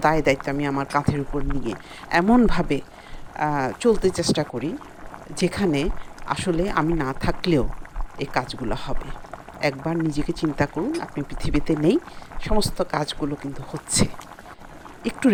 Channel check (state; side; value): identical; both; correlation 1.00